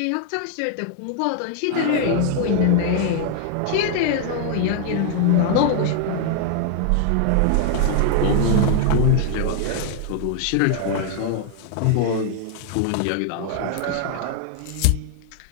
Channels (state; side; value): different; both; correlation 0.00